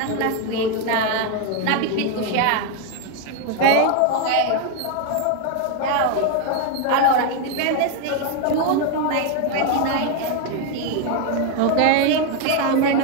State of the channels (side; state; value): both; different; correlation 0.01